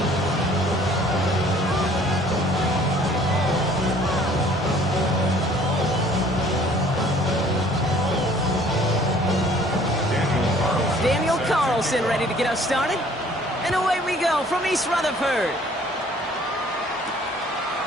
Ready to get us started. And away we go from East Rutherford.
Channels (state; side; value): normal; both; correlation 0.55